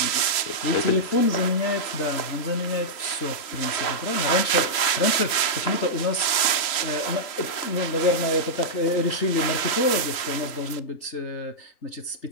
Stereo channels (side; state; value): right; late; 3.1 ms